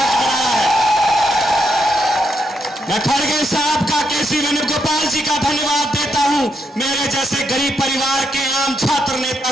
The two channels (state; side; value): normal; both; correlation 0.79